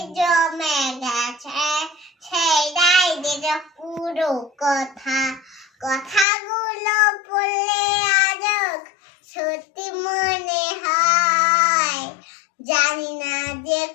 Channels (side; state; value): right; drops out; at 6.2 s